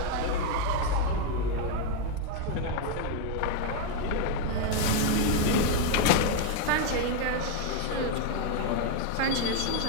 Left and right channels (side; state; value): both; different; correlation 0.00